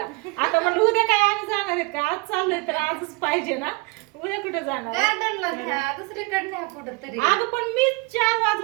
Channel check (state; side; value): quieter; left; 26.6 dB